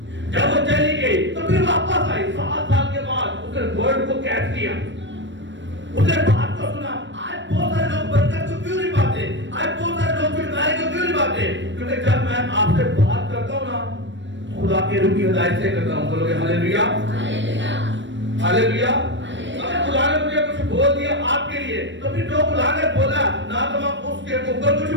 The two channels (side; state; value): left; late; 0.53 ms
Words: جب وہ چلی گئی تو پھر واپس آئی 7 سال کے بعد، اس نے ورڈ کو کیچ کیا، اس نے بات کو سنا۔ آج بہت سارے لوگ برکت کو کیوں نہیں پاتے؟ آج بہت سارے لوگ چھٹکارے کو کیوں نہیں پاتے؟ کیونکہ جب میں آپ سے بات کرتا ہوں نا خدا کے روح کی ہدایت سے کرتا ہوں۔ بولو گے ہاللیلویا، ہاللیلویا۔ اگر خدا نے مجھے کچھ بول دیا آپ کے لیے تو پھر جو خدا نے بولا نہ تو میں اس کے اوپر کچھ